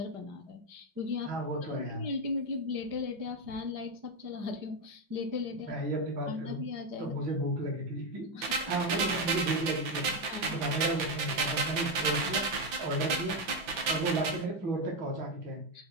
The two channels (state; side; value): late; left; 5.8 ms